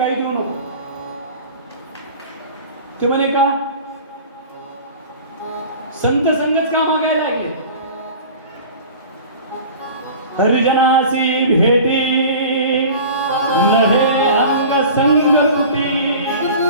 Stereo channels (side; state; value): both; inverted; correlation -0.40